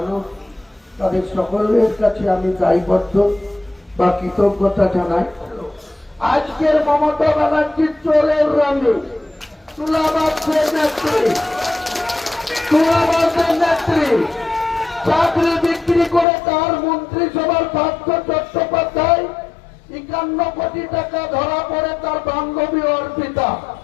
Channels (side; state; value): right; drops out; at 16.2 s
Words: তাদের সকলের কাছে আমি দায়বদ্ধ বা কৃতজ্ঞতা জানাই। আজকের মমতা ব্যানার্জির চোরের রঙে তুলাবাসের নেত্রী চাকরি বিক্রি করে তার মন্ত্রিসভার পার্থ চট্টোপাধ্যায় 51 কোটি টাকা ধরা পড়ে তার বান্ধবী অর্পিতা